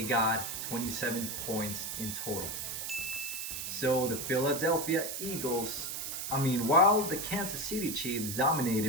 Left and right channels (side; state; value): right; noise; hiss, 5 dB below the sound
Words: got 27 points in total. So the Philadelphia Eagles, while the Kansas City Chiefs